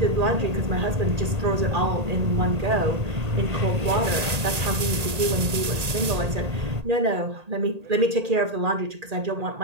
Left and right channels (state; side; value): late; left; 1.8 ms